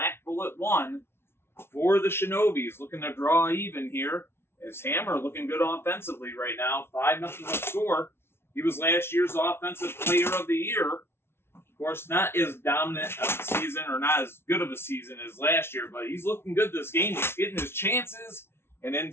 Bullet 1 for the Shinobis. Looking to draw even here, as Hammer looking good offensively right now. 5-0 the score. He was last year's Offensive Player of the Year. Of course, not as dominant of a season, or not as good of a season as last year, but he's looking good this game. He's getting his chances, and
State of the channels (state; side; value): late; right; 0.12 ms